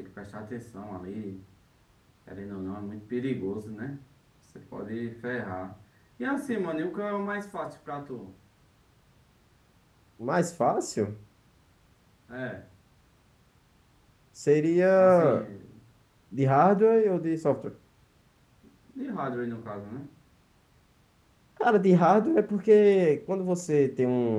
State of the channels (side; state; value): both; identical; correlation 1.00